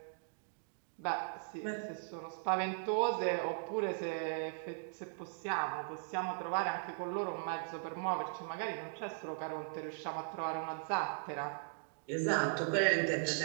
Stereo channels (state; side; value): silent; left; digital silence